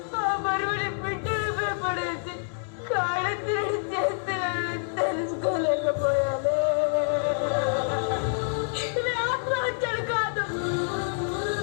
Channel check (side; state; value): right; silent; digital silence